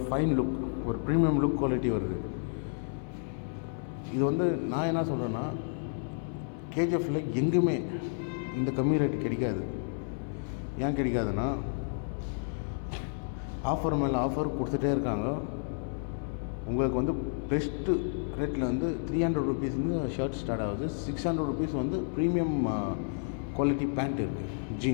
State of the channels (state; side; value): silent; right; 57 dB below the other